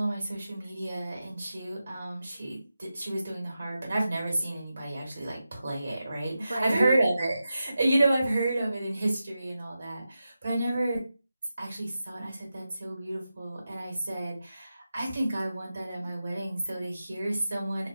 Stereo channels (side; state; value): both; inverted; correlation -0.91